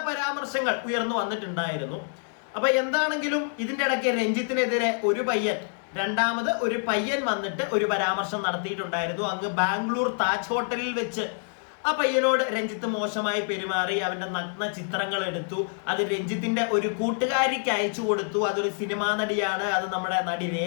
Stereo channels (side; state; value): right; silent; 60 dB below the other